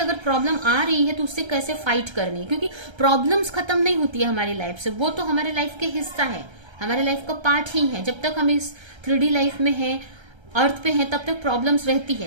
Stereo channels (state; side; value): late; left; 1.3 ms